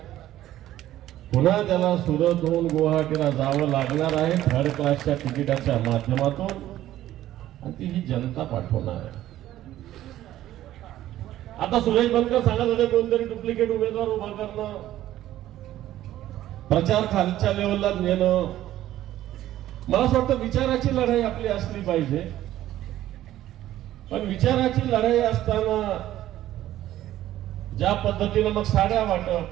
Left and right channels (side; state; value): left; quieter; 13.6 dB